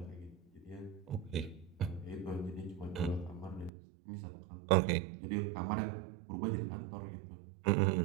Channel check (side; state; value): left; drops out; at 3.7 s